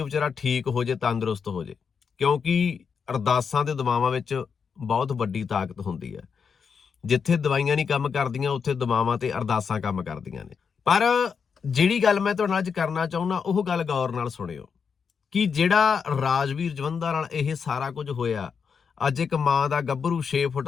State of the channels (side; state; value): right; quieter; 6.2 dB